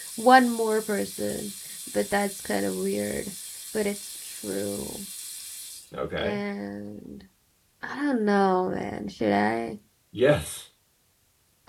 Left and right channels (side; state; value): both; identical; correlation 1.00